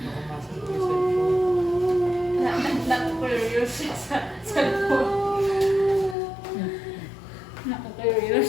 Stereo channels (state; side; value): drops out; right; at 6.2 s